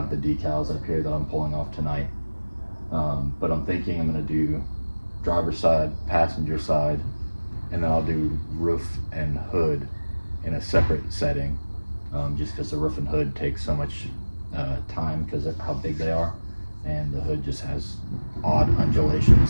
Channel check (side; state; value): both; inverted; correlation -1.00